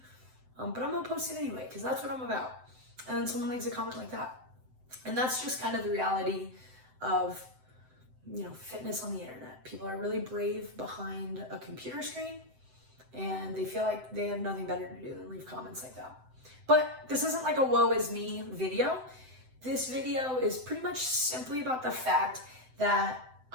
but I'm gonna post it anyway because that's what I'm about. And then someone leaves a comment like that. And that's just kind of the reality of, fitness on the internet. People are really brave behind a computer screen and they feel like they have nothing better to do than leave comments like that. But this isn't like a woe is me video. This video is pretty much simply about the fact that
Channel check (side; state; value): left; late; 7.8 ms